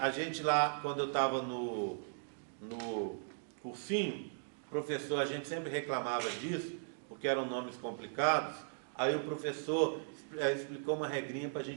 gente lá, quando eu estava no cursinho, professor, a gente sempre reclamava disso, porque eram nomes complicados. Aí o professor explicou uma regrinha para a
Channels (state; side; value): silent; left; digital silence